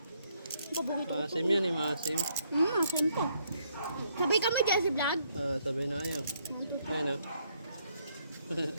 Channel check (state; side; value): inverted; both; correlation -0.72